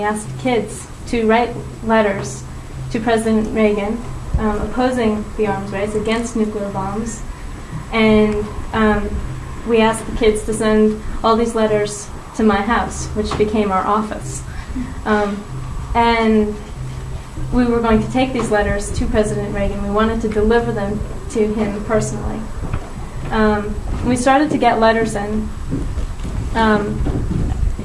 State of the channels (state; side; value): identical; both; correlation 1.00